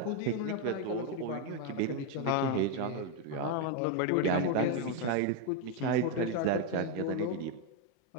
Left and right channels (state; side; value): different; both; correlation 0.01